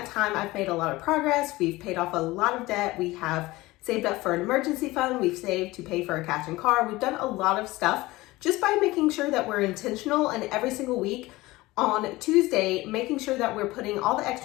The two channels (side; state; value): right; quieter; 19.6 dB